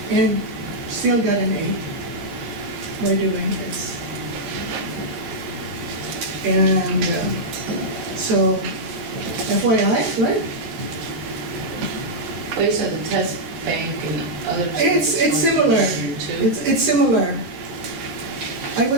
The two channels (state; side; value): late; left; 13 ms